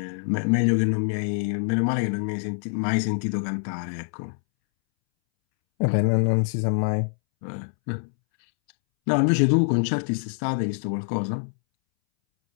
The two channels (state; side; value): silent; right; 62 dB below the other